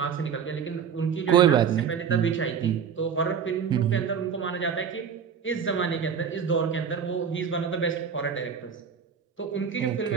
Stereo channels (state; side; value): quieter; left; 7.0 dB